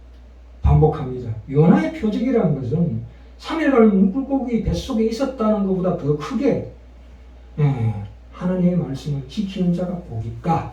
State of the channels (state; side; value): identical; both; correlation 1.00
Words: 반복합니다. 요나의 표적이라는 것은 3일간 물고기 뱃속에 있었다는 것보다 더 크게 하나님의 말씀을 지키는 자가 복있다